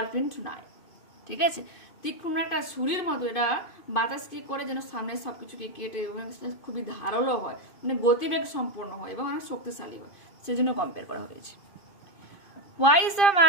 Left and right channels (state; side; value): late; right; 2.5 ms